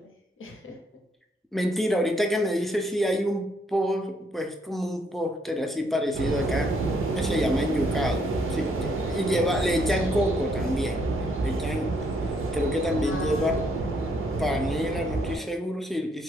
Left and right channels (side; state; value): both; normal; correlation 0.71